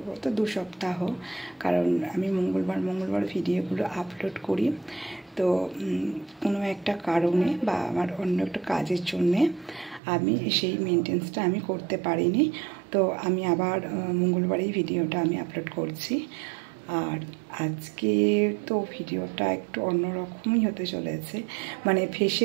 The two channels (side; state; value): left; drops out; at 10.0 s